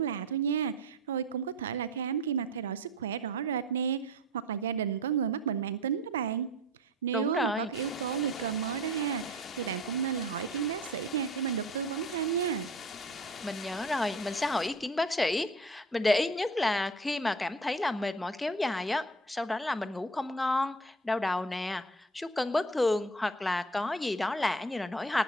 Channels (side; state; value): both; normal; correlation 0.39